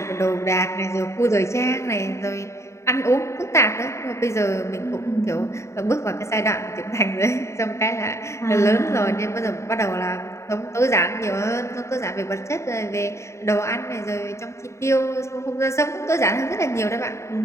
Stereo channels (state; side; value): late; right; 0.14 ms